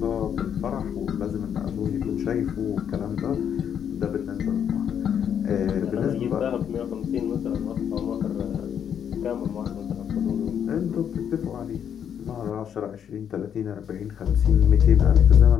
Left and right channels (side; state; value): right; quieter; 8.6 dB